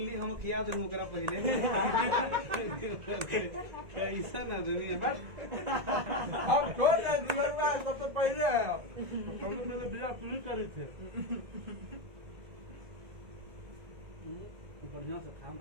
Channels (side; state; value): left; late; 1.8 ms